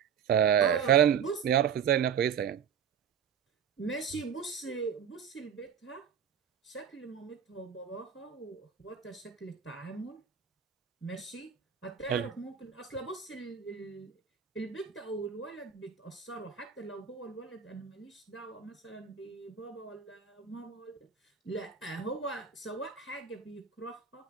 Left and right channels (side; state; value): left; quieter; 7.9 dB